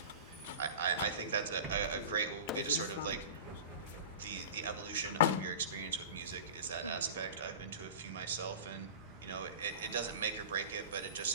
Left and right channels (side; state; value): both; inverted; correlation -0.33